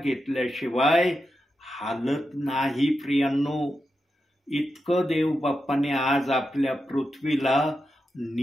हालत नाही. प्रियांनो, इतकं देव बाप्पाने आज आपल्या पृथ्वीला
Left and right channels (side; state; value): both; normal; correlation 0.88